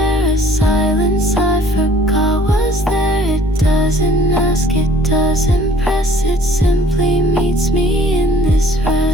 a silence I forgot was there. It doesn't ask, it doesn't press, it simply meets me in this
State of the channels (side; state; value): both; normal; correlation 0.55